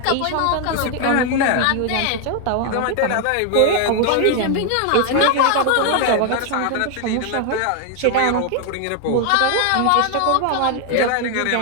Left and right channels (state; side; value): different; both; correlation 0.00